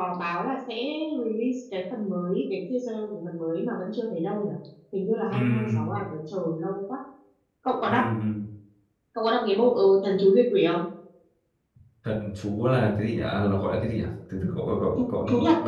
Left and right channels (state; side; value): identical; both; correlation 1.00